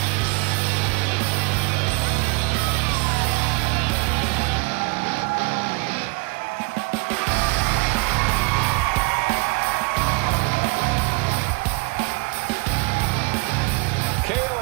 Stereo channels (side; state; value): left; quieter; 28.9 dB